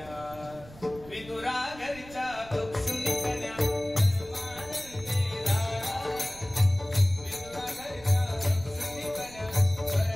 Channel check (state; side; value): noise; right; rumble, 18 dB below the sound